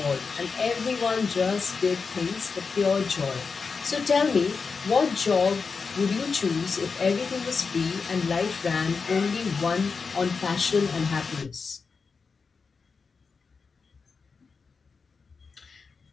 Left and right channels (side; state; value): right; quieter; 5.0 dB